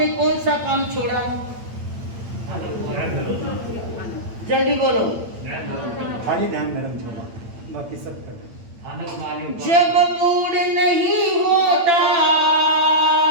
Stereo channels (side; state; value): left; late; 8.8 ms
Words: कौन सा काम छोड़ा? जल्दी बोलो। खाली ध्यान मैडम छोड़ा, बाकी सब कर। जब मूड नहीं होता,